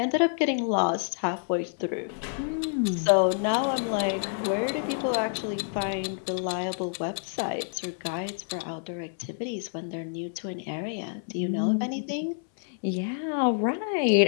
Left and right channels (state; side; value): silent; right; 59 dB below the other